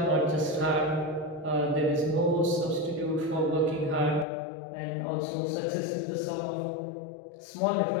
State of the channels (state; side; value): drops out; right; at 4.2 s